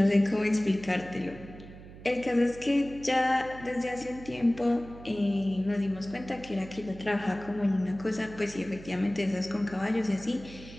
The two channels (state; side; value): noise; right; hum, 16 dB below the sound